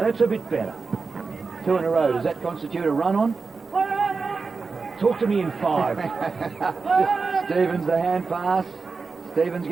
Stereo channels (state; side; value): quieter; left; 4.5 dB